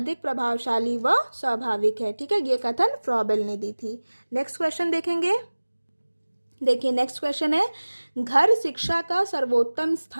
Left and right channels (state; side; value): inverted; both; correlation -1.00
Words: प्रभावशाली व स्वाभाविक है। ठीक है, ये कथन फ्रॉबेल ने दी थी। नेक्स्ट क्वेश्चन देखेंगे। देखिए नेक्स्ट क्वेश्चन है, घर शिक्षा का सर्वोत्तम